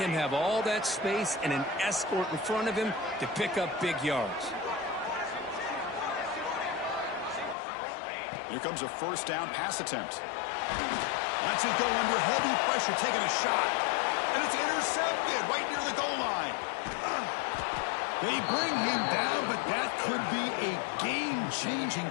him have all that space and an escort in front of him to pick up big yards. Here comes a 1st down pass attempt. Lets it go under heavy pressure, taking a shot. And it's intercepted right near the goal line. They bring him down, but that could be a game-changing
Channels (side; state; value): right; drops out; at 7.6 s